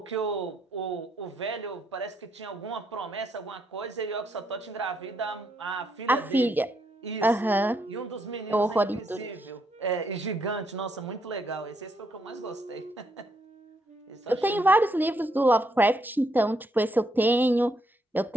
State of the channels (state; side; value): normal; both; correlation 0.76